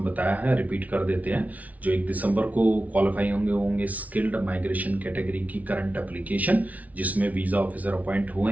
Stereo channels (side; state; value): left; late; 0.071 ms